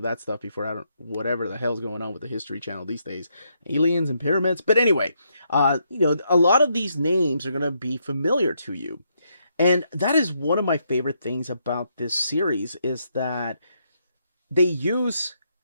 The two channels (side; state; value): both; inverted; correlation -0.77